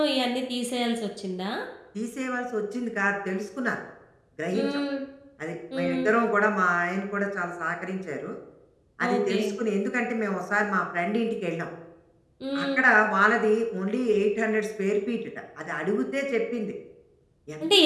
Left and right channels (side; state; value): both; identical; correlation 1.00